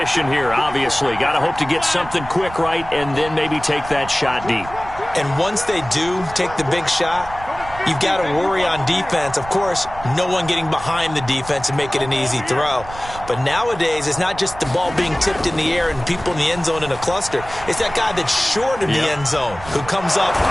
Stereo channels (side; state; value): right; noise; rumble, 15 dB below the sound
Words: here, obviously. Got to hope to get something quick right and then maybe take that shot deep. And once they do take the big shot, you've got to worry on defense. Of course, no one getting behind the defense and make it an easy throw. But nowadays, it's not just the ball being tipped in the air and people in the end zone in a cluster. It's that guy that's short of the end zone who comes up.